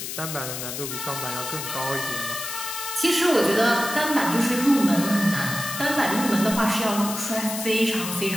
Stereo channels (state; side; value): noise; left; hiss, 6 dB below the sound